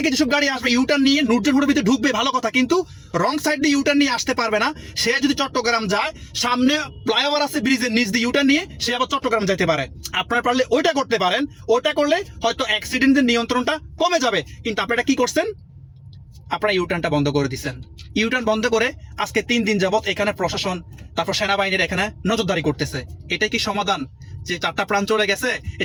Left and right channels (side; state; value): both; identical; correlation 1.00